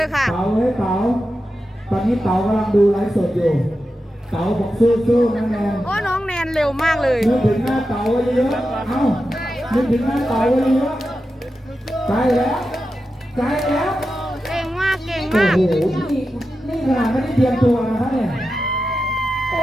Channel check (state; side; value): normal; both; correlation 0.90